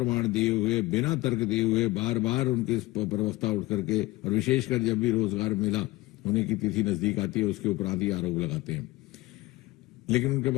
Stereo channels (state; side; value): quieter; right; 19.6 dB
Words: दिए हुए, बिना तर्क दिए हुए बार बार उनके प्रवक्ता उठ करके, और विशेषकर जब भी रोजगार मेला होने की तिथि नजदीक आती है उसके ऊपर आदि आरोप लगाते हैं, लेकिन उनके